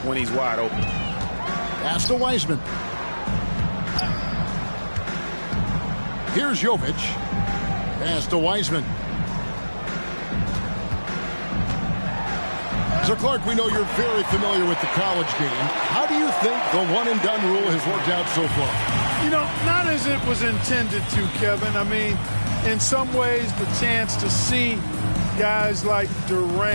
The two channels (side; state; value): both; inverted; correlation -1.00